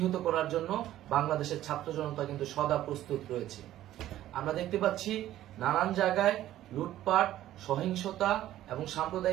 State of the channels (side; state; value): left; quieter; 13.4 dB